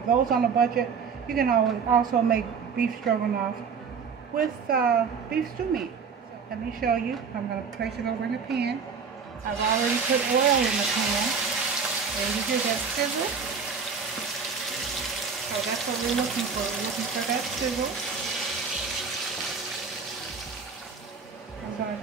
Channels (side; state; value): left; quieter; 5.8 dB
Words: those on a budget, you can also make beef stroganoff with beef stew meat. So let me show you. I'm going to place it over in the pan. I've already put oil in the pan. And you hear that sizzle? So that's what we're looking for. We're looking for that sizzle. I'm going to